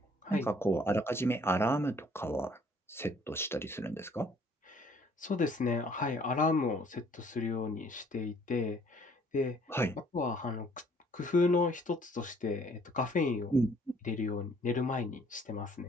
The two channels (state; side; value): normal; both; correlation 0.60